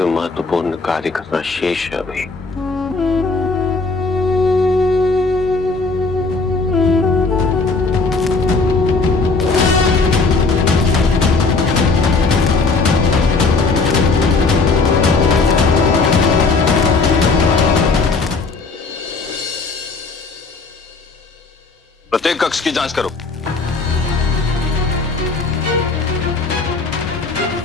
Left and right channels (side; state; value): right; quieter; 4.0 dB